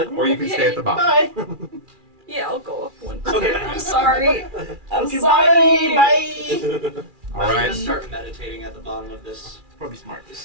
Or you can stay at the bottom. bye. Yeah, I'll go up 1. Okay. I'm sorry. I'm Okay, sorry. Bye. All I'm right, gonna start meditating at the bottom of this Probably smart.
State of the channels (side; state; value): left; late; 2.4 ms